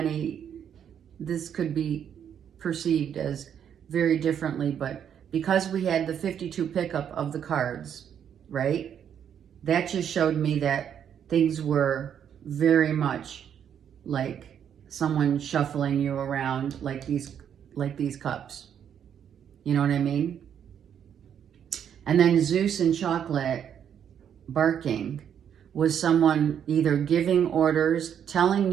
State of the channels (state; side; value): quieter; left; 8.8 dB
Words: this could be perceived as very differently, but because we had the 52 pickup of the cards, right? That just showed me that things were very much like someone shuffling you around like these cups. You know what I mean? And then Zeus and Chocolate barking was someone either giving orders, telling